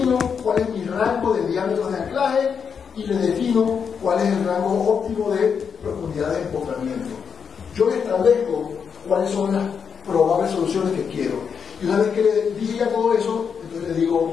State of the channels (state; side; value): quieter; right; 6.6 dB